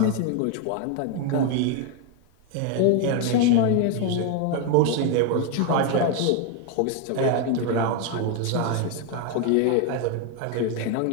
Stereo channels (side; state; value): both; different; correlation 0.01